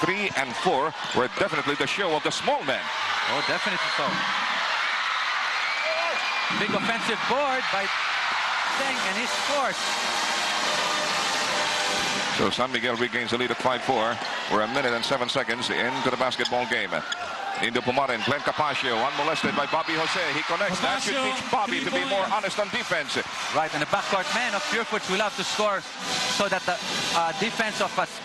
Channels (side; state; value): both; identical; correlation 1.00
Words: 3 and 4 were definitely the show of the small men. Oh, definitely so. Big offensive board by Teng, and he scores. So San Miguel regains the lead at 5-4. We're 1 minute and 7 seconds into the basketball game. Dindo Pumaren, Glenn Capasio, unmolested by Bobby Jose. He connects. That should teach Bobby to be more honest on defense. Right, and the backcourt man of Purefoods will have to score so that the defense of